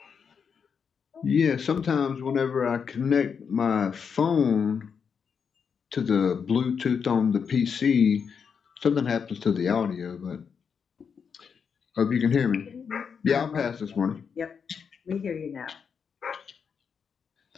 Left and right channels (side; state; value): right; quieter; 6.5 dB